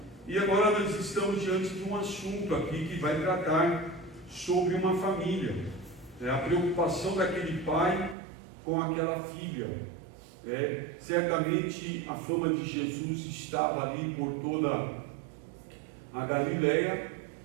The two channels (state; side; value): drops out; left; at 8.2 s